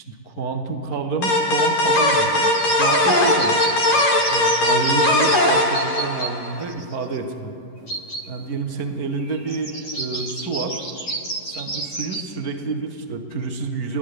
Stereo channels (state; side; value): late; right; 11 ms